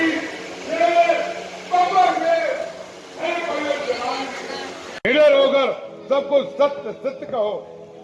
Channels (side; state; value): both; identical; correlation 1.00